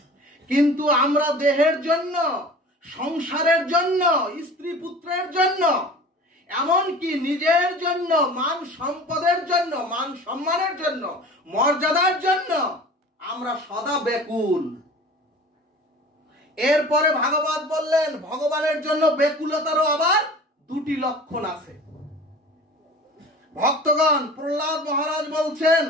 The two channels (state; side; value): normal; both; correlation 0.41